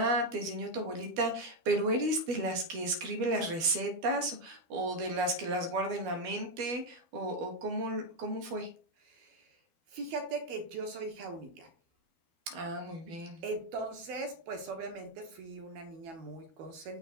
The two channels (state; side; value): late; left; 12 ms